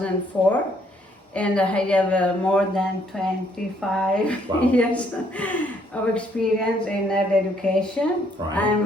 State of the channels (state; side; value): normal; both; correlation 0.67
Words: and I have more than 25 Wow. years of experience in early education. Right.